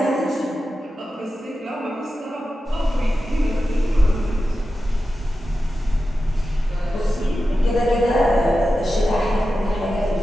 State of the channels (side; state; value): both; normal; correlation 0.92